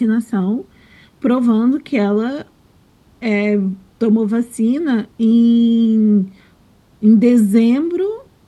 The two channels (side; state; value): both; identical; correlation 1.00